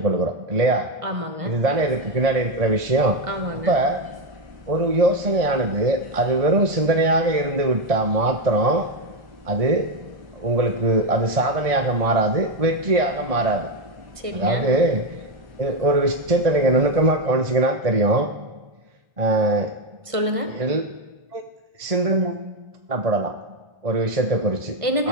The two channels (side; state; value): left; late; 1.5 ms